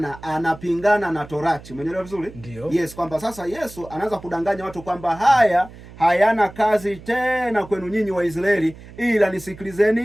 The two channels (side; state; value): right; noise; hum, 18 dB below the sound